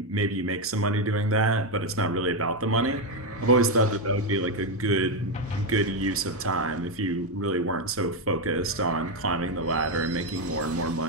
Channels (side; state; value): both; normal; correlation 0.06